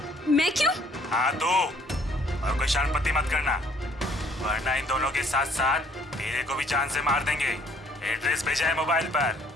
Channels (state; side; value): normal; both; correlation 0.61